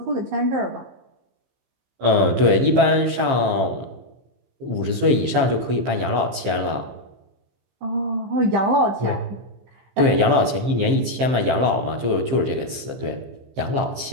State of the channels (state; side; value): late; left; 15 ms